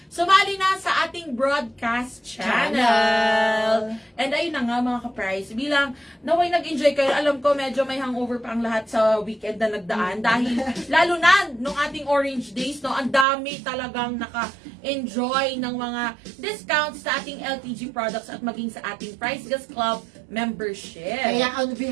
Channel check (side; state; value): left; drops out; at 13.2 s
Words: Sumali na sa ating broadcast channel. And ayun na nga mga ka-price. Bilang naway nag-enjoy kayo, alam ko medyo may hangover pa ang lahat sa weekend na nagdaan. Dahil lalo na nung ating Orange Days, no, ang dami talagang naka-enjoy ng mga discounts sa ating LPG products at maging sa ating Price Gas Club membership. Kaya on